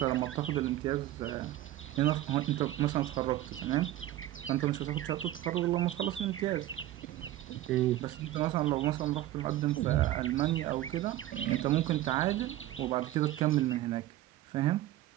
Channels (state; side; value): quieter; left; 14.5 dB